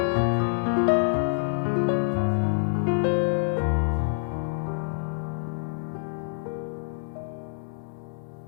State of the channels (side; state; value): right; silent; digital silence